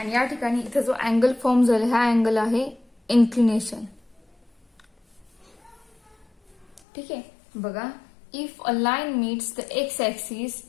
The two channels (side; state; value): right; drops out; at 6.8 s